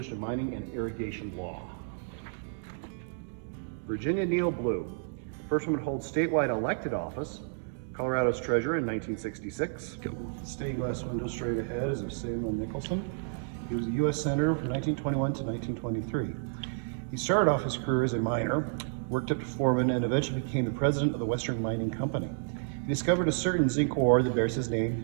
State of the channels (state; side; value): silent; left; digital silence